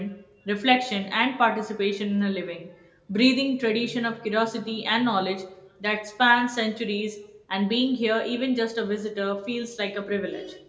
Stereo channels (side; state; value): both; identical; correlation 1.00